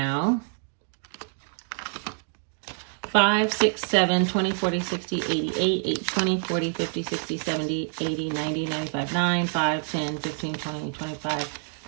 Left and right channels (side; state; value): left; silent; 57 dB below the other